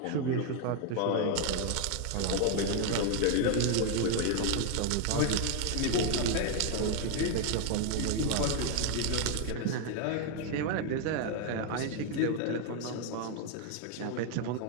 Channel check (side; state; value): both; different; correlation 0.00